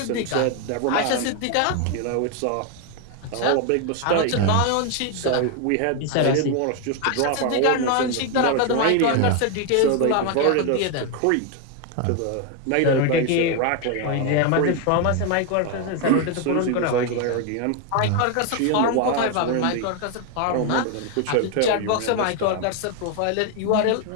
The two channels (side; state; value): both; different; correlation 0.01